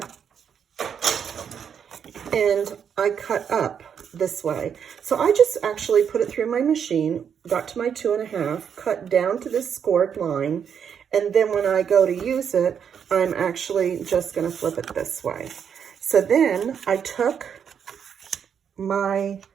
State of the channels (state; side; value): quieter; left; 7.7 dB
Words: And I cut up this way. So I just actually put it through my machine, got to my 2 1/2, cut down to this scored line, and then when I go to use it, I'm actually just gonna flip it this way. So then I took my